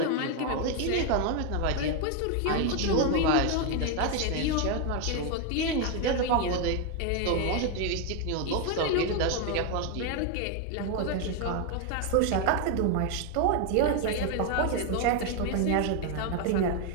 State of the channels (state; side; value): different; both; correlation 0.01